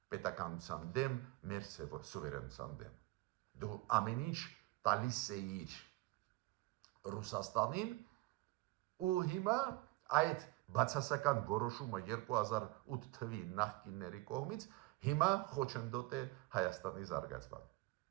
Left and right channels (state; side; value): quieter; left; 20.4 dB